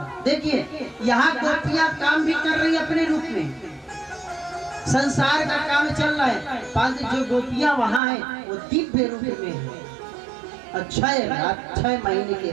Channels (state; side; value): drops out; left; at 8.0 s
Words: देखिए यहाँ गोपियां काम भी कर रही अपने रूप में, संसार का काम चल रहा है, परंतु जो गोपियां वहाँ हैं वो दिव्य रूप में है। और 6 महीने की